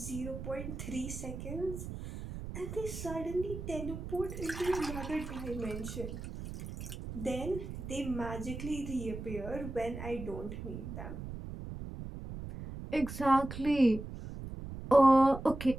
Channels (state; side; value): noise; right; rumble, 8 dB below the sound